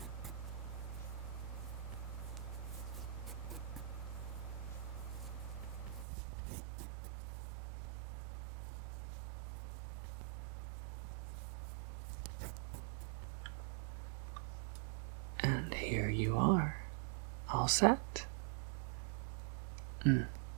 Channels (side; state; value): left; drops out; at 6.1 s